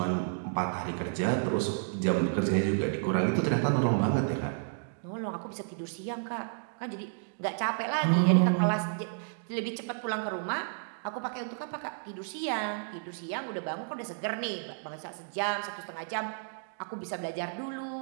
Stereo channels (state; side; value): silent; left; digital silence